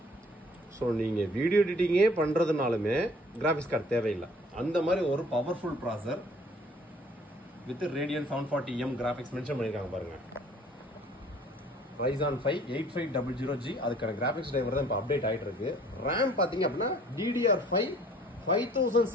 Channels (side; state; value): both; normal; correlation 0.55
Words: ஸோ நீங்கள் வீடியோ எடிட்டிங்கே பண்ணுறதுனாலுமே கிராஃபிக்ஸ் கார்டு தேவையில்லை. அந்த மாதிரி ஒரு பவர்ஃபுல் ப்ராசர் with Radeon 740M graphics mention பண்ணியிருக்காங்க பாருங்க. Ryzen 5 8500G அதுக்கான கிராஃபிக்ஸ் டிரைவர் தான் இப்போ அப்டேட் ஆகிட்டு இருக்கு. ரேம் பார்த்தீங்க அப்படின்னா DDR5